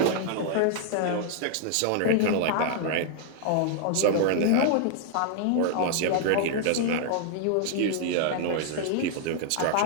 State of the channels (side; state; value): both; different; correlation -0.01